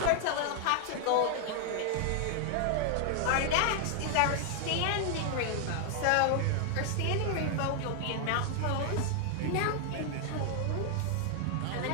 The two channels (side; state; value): both; different; correlation 0.00